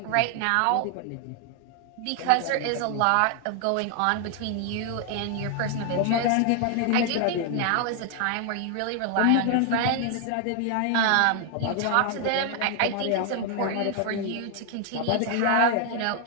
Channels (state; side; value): different; both; correlation 0.00